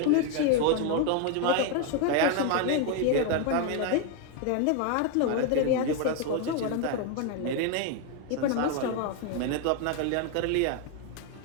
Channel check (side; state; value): both; different; correlation 0.01